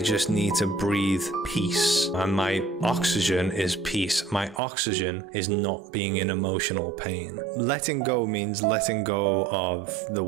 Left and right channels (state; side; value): drops out; left; at 4.6 s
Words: need to breathe peace. And my oxygen is peace. My oxygen is not being in emotional pain. Letting go means letting go of the